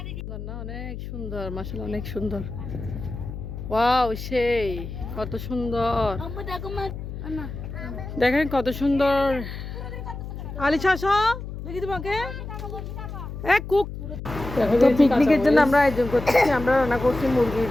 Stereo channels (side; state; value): left; noise; hum, 9 dB below the sound